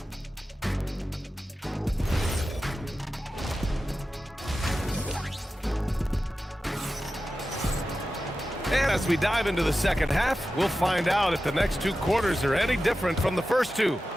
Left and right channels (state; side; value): normal; both; correlation 0.93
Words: As we dive into the second half, we'll find out if the next 2 quarters are any different from the first 2.